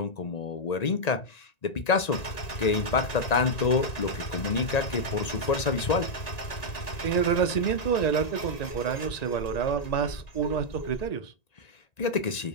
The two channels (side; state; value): right; late; 1.9 ms